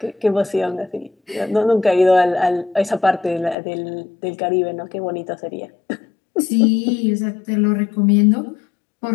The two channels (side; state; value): right; drops out; at 3.6 s